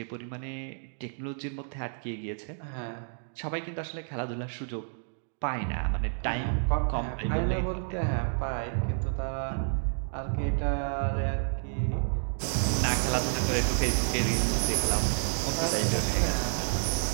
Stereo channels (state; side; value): silent; left; digital silence